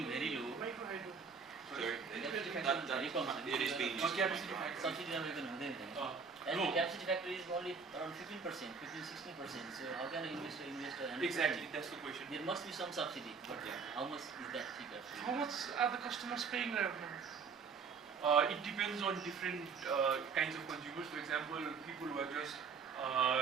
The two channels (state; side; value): quieter; left; 5.5 dB